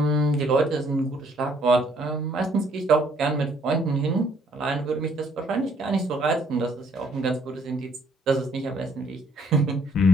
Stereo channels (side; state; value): both; normal; correlation 0.64